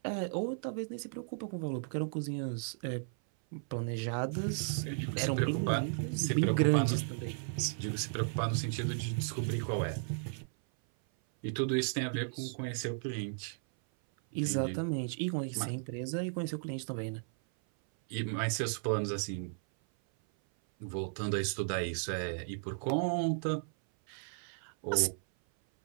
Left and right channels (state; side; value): silent; left; 54 dB below the other